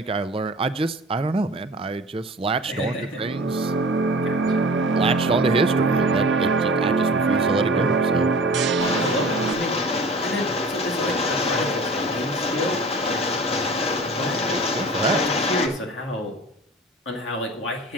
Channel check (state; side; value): normal; both; correlation 0.41